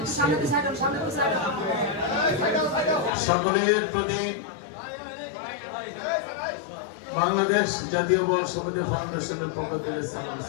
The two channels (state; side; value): drops out; right; at 3.1 s